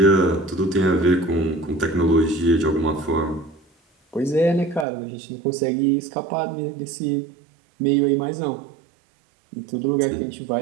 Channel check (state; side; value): drops out; left; at 4.9 s